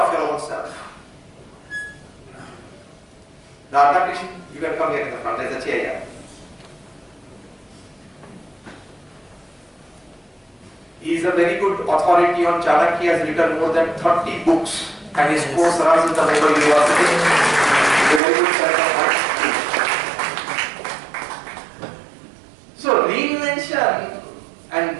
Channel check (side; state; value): left; drops out; at 18.2 s